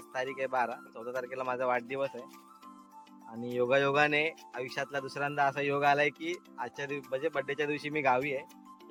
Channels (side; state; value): both; identical; correlation 1.00